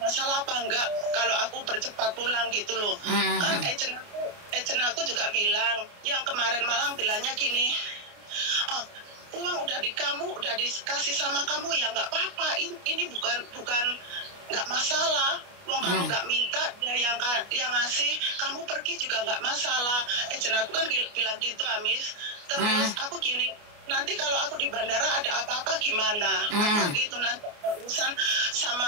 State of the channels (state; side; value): late; left; 29 ms